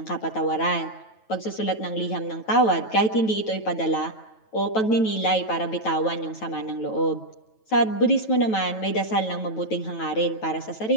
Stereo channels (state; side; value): late; right; 9.2 ms